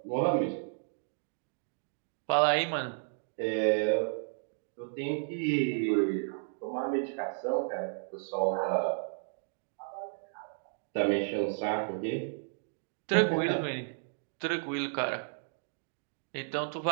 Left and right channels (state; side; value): silent; left; digital silence